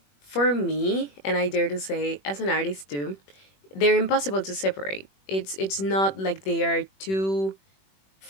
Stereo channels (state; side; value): late; right; 21 ms